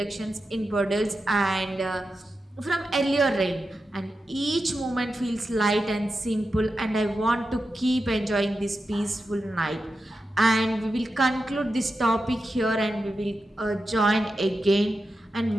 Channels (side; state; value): both; normal; correlation 0.90